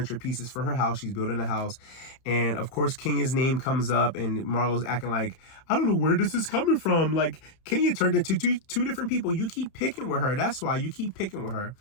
pieces for her house. She's building a house. And of course, Kenya's name comes up, and Marlo's acting like, I don't know where this is coming from. Like, Kenya turned into two different people. You keep picking with her. That's why you keep picking with her.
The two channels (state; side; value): late; right; 31 ms